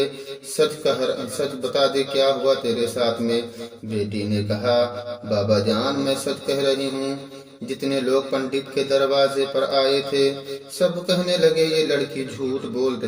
سچ بتا دے، کیا ہوا تیرے ساتھ میں؟ بیٹی نے کہا، بابا جان میں سچ کہہ رہی ہوں۔ جتنے لوگ پنڈت کے دروازے پر آئے تھے سب کہنے لگے، یہ لڑکی جھوٹ بول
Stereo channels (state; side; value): identical; both; correlation 1.00